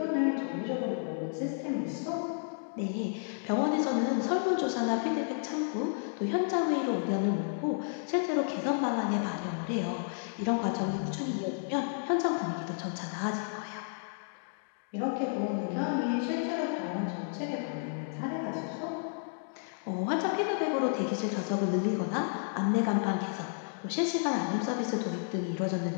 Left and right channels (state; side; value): silent; right; digital silence